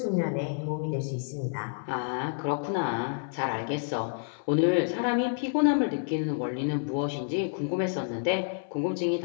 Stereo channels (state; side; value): silent; right; 59 dB below the other